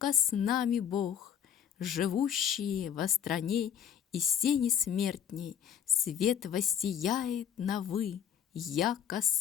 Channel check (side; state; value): right; quieter; 9.0 dB